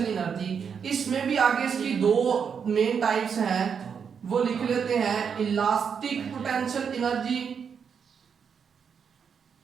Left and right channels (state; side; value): quieter; left; 6.8 dB